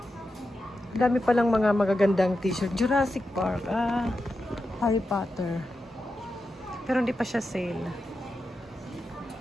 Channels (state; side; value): normal; both; correlation 0.89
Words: Dami palang mga magagandang t-shirt. Jurassic Park. Harry Potter. Pero hindi pa siya sale.